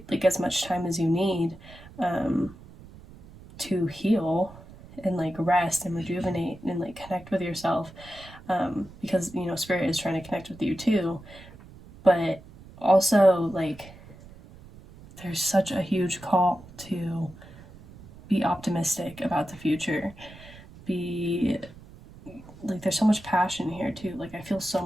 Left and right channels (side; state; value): right; noise; rumble, 20 dB below the sound